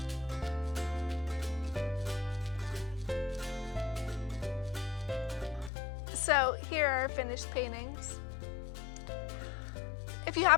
So here are our finished paintings. If you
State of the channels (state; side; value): drops out; right; at 5.7 s